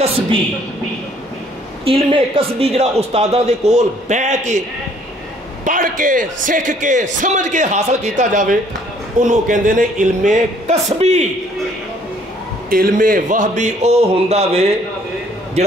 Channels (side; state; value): both; normal; correlation 0.61